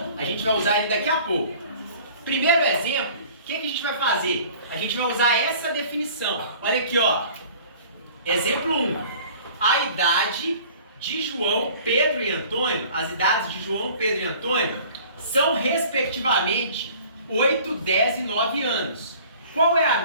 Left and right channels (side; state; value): both; inverted; correlation -0.48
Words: a gente vai usar ele daqui a pouco. Primeiro exemplo, o que a gente vai fazer? A gente vai usar essa definição. Olha aqui, ó. Exemplo 1. A idade de João, Pedro e Antônio, as idades de João, Pedro e Antônio, são respectivamente 8, 10 e 9 anos. Qual é a